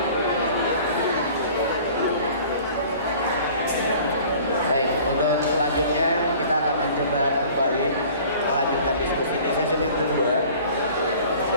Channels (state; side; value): inverted; both; correlation -0.48